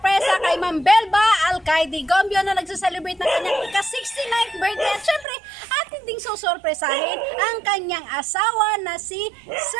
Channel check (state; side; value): drops out; left; at 5.2 s